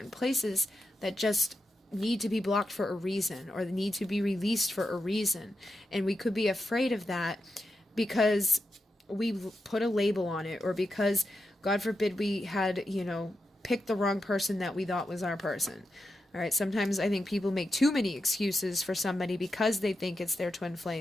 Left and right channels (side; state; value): both; normal; correlation 0.88